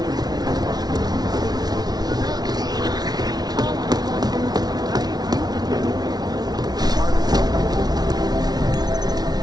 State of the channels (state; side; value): late; left; 0.19 ms